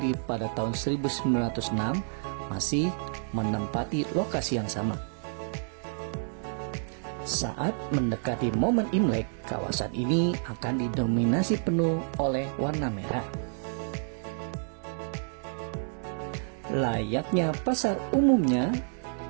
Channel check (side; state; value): left; silent; digital silence